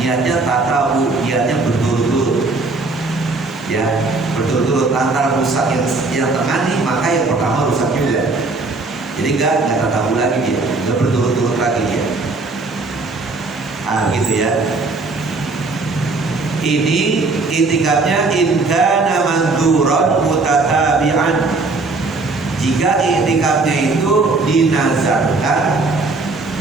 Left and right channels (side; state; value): left; quieter; 3.6 dB